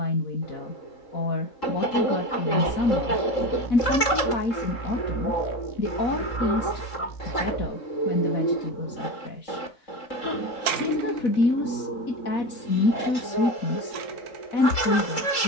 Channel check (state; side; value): late; right; 3.7 ms